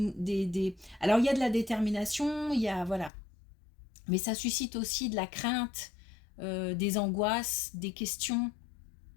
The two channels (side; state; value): right; drops out; at 3.1 s